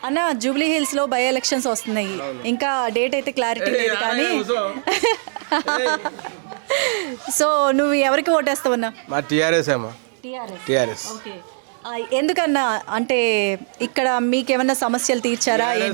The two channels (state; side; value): silent; left; digital silence